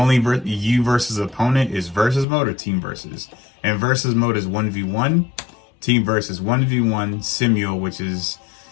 you versus opponent is versus mode or team versus. And versus mode is 1v1. Team versus 1v1 simul, which is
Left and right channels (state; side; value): drops out; right; at 2.2 s